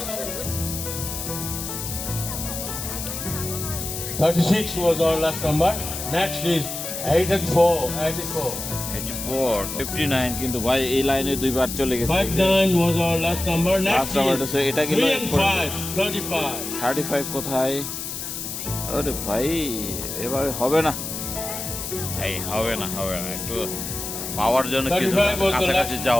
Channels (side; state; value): left; noise; hiss, 6 dB below the sound